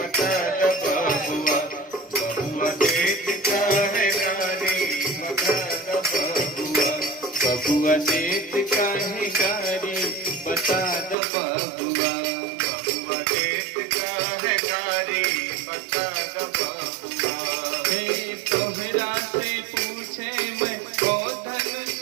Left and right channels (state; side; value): drops out; left; at 11.2 s